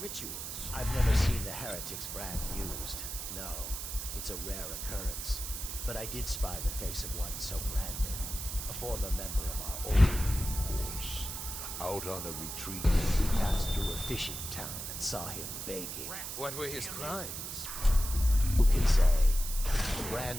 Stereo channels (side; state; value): right; noise; hiss, 6 dB below the sound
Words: rituals? I've never seen the heretic's brand used. No, it's a rare occurrence. But I did spy the face of one so branded. A former member of our order, of course. Out on a retreat, we passed through a fishing town and saw him begging. What were his crimes? Who can say? The